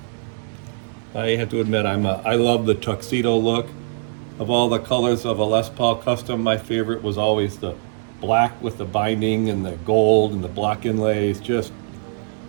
I have to admit, I love the tuxedo look. Of all the colors of a Les Paul Custom, my favorite was always the black with the binding and the gold and the block inlays. Just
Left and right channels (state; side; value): silent; left; digital silence